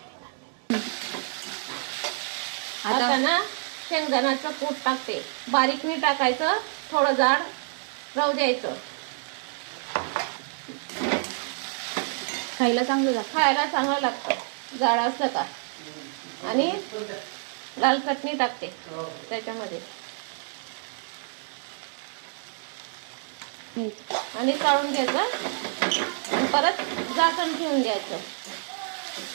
आता ना शेंगदाण्याचं कूट टाकते. बारीक नाही टाकायचं, थोडं जाड राहू द्यायचं. खायला चांगलं लागतं. खायला चांगलं लागतं जाड असतं का. आणि लाल चटणी टाकते त्याच्यामध्ये. आणि काढून घ्यायचं आणि परत झाकण ठेवून द्यायचं.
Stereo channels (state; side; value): silent; left; 60 dB below the other